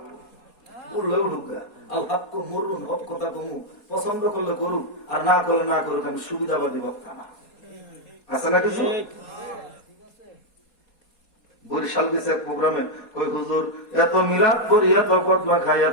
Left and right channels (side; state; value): right; late; 4.2 ms